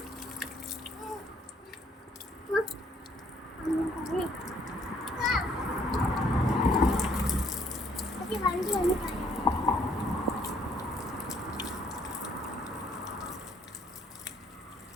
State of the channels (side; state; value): both; normal; correlation 0.65